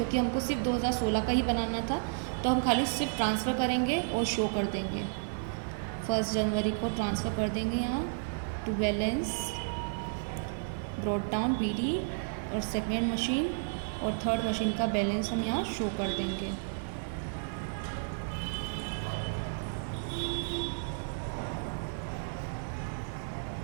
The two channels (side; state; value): left; silent; 56 dB below the other